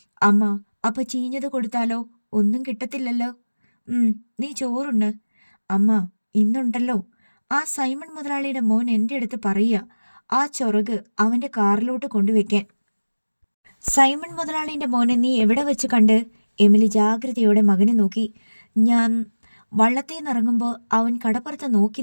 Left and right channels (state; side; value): inverted; both; correlation -1.00